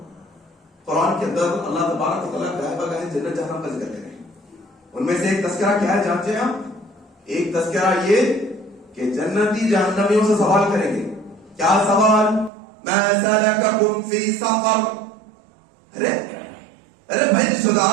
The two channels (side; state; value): left; drops out; at 12.5 s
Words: قرآن کے اندر اللہ تبارک و تعالیٰ گاہے بگاہے جنت جہنم کا ذکر کریں. ان میں سے ایک تذکرہ کیا ہے جانتے ہیں آپ؟ ایک تذکرہ یہ کہ جنتی جہنمیوں سے سوال کریں گے. کیا سوال؟ ما سلککم فی سقر. ارے بھائی رشتہ